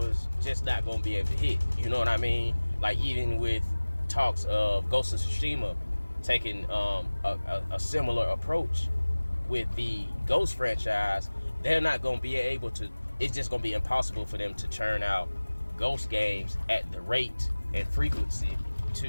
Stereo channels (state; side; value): inverted; both; correlation -1.00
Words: just not gonna be able to hit. You know what I mean? Like, even with talks of Ghost of Tsushima taking a similar approach with the Ghost franchise, they're not gonna be able to. It's just gonna be impossible for them to churn out Ghost games at the rate and frequency to